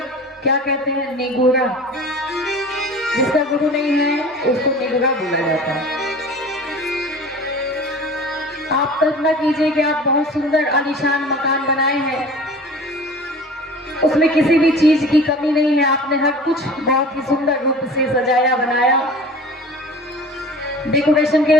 क्या कहते हैं? निगूढ़ा। जिसका गुरु नहीं है उसको निगूढ़ा बोला जाता है। आप कल्पना कीजिए कि आप बहुत सुंदर आलीशान मकान बनाए हैं, उसमें किसी भी चीज की कमी नहीं है, आपने हर कुछ बहुत ही सुंदर रूप से सजाया बनाया, डेकोरेशन के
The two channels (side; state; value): both; normal; correlation 0.41